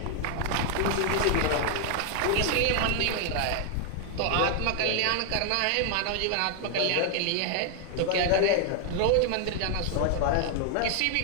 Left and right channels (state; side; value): different; both; correlation 0.00